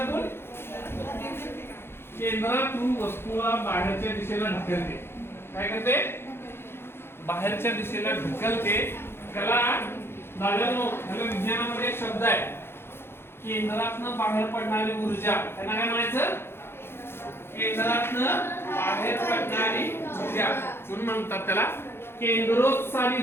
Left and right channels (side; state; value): right; late; 0.11 ms